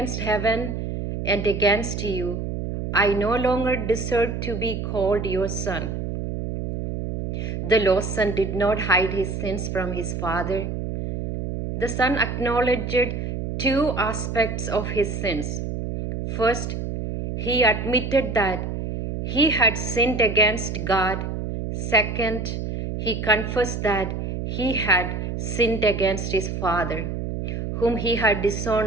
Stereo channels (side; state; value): right; noise; hum, 4 dB below the sound